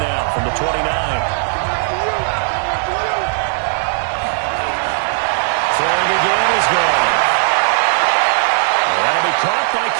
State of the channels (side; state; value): left; silent; 58 dB below the other